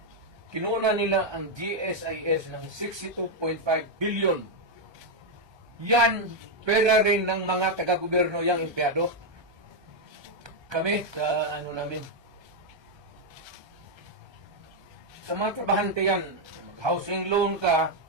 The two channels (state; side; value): late; left; 1.2 ms